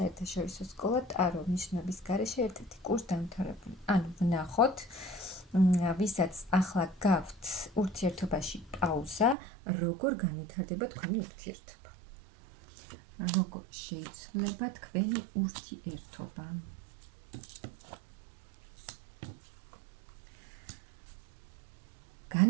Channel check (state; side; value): drops out; left; at 9.3 s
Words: სკოლა ტარო ნიშნობის გარეშე ერთ-ერთი კურსდამთავრებული. ანუ ვნახოთ ვისაც ახლა გაქვთ ურთიერთობაში პაუზა, როგორ განვითარდება თქვენი ურთიერთობა. როგორ შეიცვლება თქვენი ურთიერთობა.